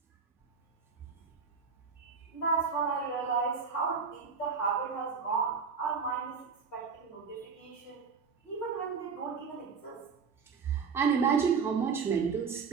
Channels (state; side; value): quieter; left; 5.7 dB